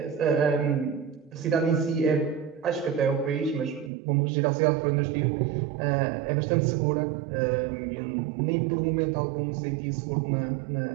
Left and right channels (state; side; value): drops out; left; at 3.9 s